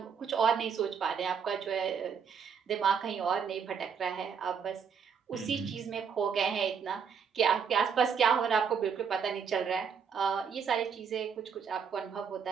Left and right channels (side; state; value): left; quieter; 6.7 dB